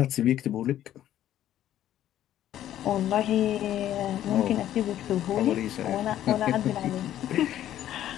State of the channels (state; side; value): quieter; right; 12.1 dB